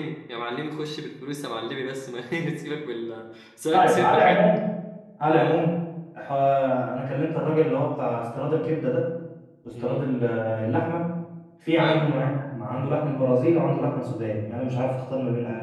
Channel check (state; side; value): identical; both; correlation 1.00